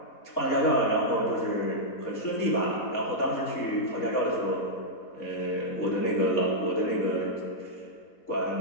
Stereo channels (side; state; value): right; late; 4.1 ms